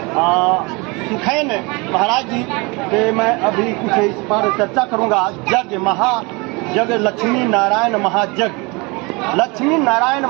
सुखैन महाराज जी के मैं अभी कुछ इस पर चर्चा करूंगा। यज्ञ लक्ष्मी नारायण महायज्ञ। लक्ष्मी नारायण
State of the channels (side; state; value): left; quieter; 27.2 dB